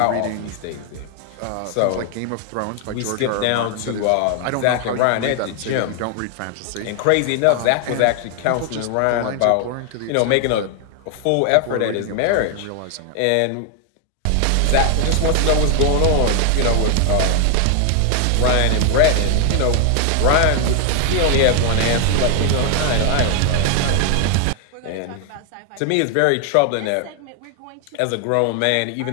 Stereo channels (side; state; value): both; different; correlation 0.00